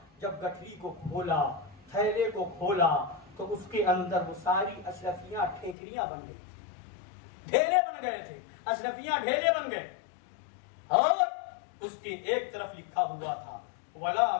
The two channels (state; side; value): drops out; right; at 5.8 s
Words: जब गठरी को खोला, थैले को खोला तो उसके अंदर वो सारी अशरफियां ठेकरियां बन गई, ढेले बन गए थे, अशरफियां ढेले बन गए। और उसके एक तरफ लिखा हुआ था वला